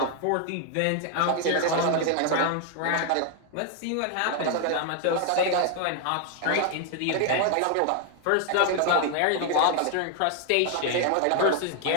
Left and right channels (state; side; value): different; both; correlation 0.01